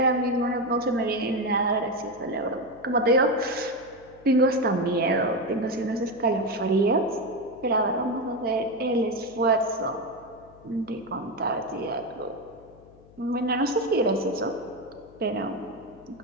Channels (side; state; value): left; noise; hum, 24 dB below the sound